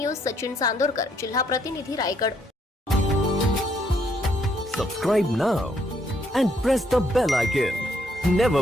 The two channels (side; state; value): both; normal; correlation 0.71